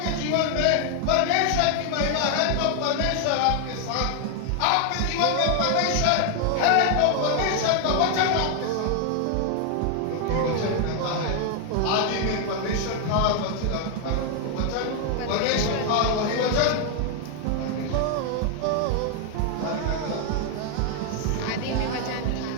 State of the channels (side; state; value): both; different; correlation 0.00